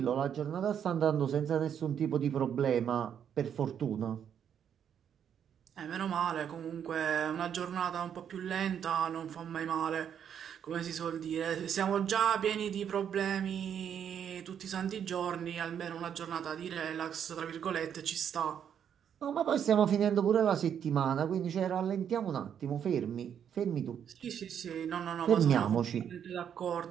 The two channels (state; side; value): quieter; left; 8.6 dB